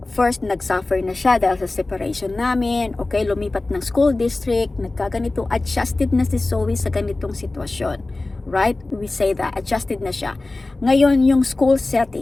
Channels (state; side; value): quieter; right; 3.1 dB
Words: First, nagsuffer na siya dahil sa separation namin. Okay, lumipat ng school district, nagkaganito, adjusted na si Zoe sa ganitong sitwasyon. Right? We say that, adjusted na siya. Ngayon, yung school